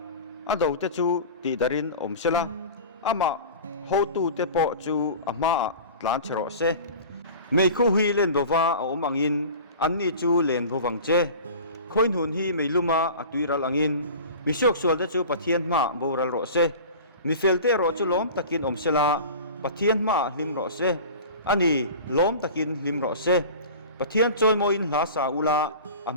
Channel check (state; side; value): inverted; both; correlation -0.37